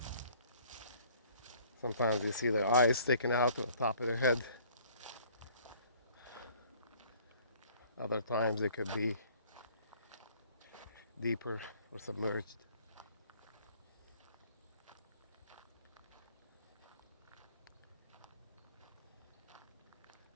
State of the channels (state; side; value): inverted; both; correlation -0.56